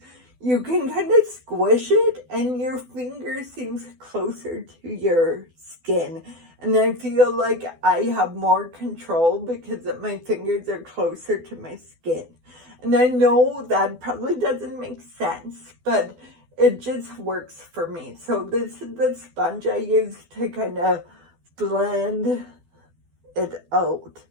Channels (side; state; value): left; late; 12 ms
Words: you can kind of squish it and your finger seems closer to your skin. And I feel like I have more control because my fingers are closer to my skin. And I know that probably doesn't make sense, but it just works for me. So this is the sponge I use to kind of blend it out.